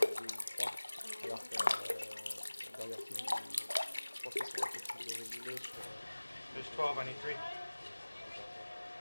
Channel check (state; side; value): inverted; both; correlation -1.00